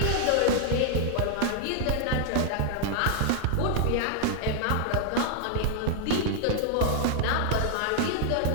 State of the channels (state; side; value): different; both; correlation 0.00